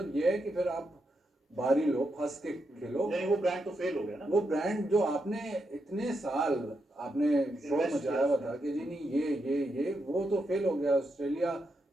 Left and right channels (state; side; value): normal; both; correlation 0.83